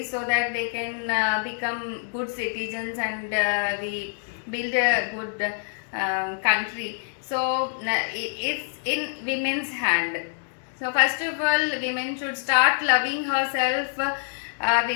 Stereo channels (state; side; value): silent; right; digital silence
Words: so that they can become good citizens, and we build a good country. So it's in women's hand. So first of all, women should start loving herself.